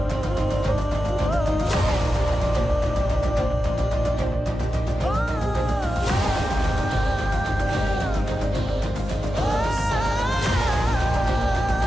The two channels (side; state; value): both; normal; correlation 0.90